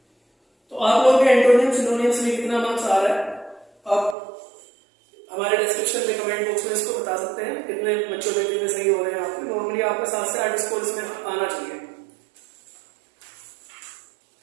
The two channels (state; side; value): drops out; left; at 4.2 s